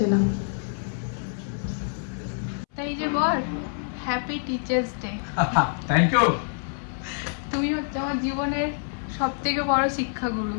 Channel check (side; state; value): right; silent; 61 dB below the other